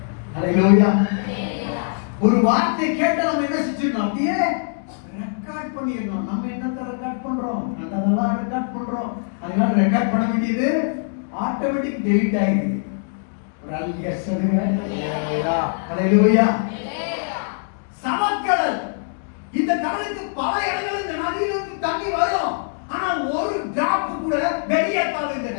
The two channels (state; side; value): silent; right; digital silence